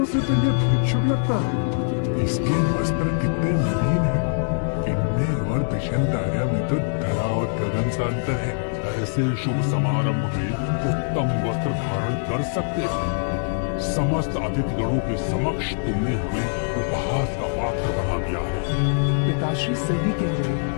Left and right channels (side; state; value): right; silent; digital silence